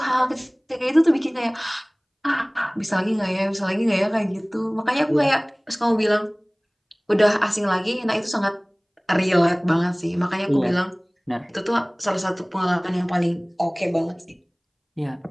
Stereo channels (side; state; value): both; identical; correlation 1.00